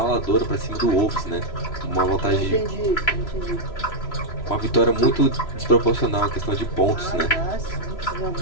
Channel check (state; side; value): late; right; 3.0 ms